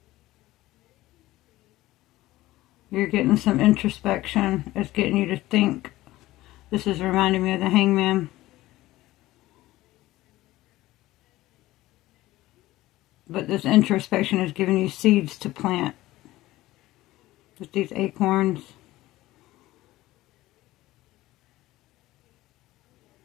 You're getting some introspection. It's getting you to think. This is reminding me of the Hangman. But this introspection is giving you seeds to plant. With these acorns.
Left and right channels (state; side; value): quieter; right; 17.0 dB